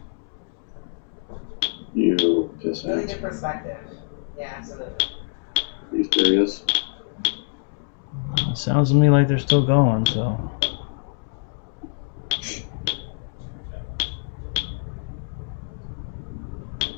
You piss Really ass. good perspective. Yeah, absolutely. These curious. It sounds to me like they're still going, so.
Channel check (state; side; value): silent; right; digital silence